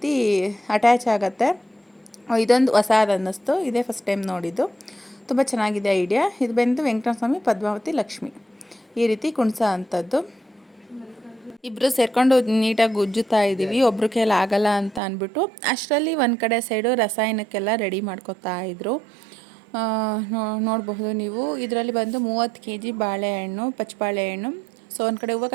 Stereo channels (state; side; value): drops out; left; at 15.0 s